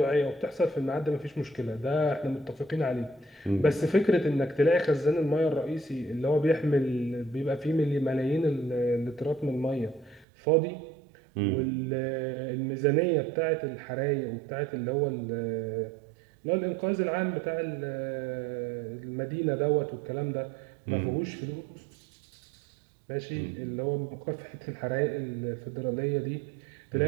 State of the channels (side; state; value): left; drops out; at 10.2 s